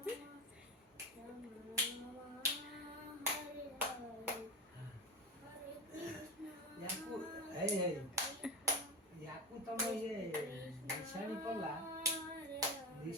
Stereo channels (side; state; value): both; normal; correlation 0.22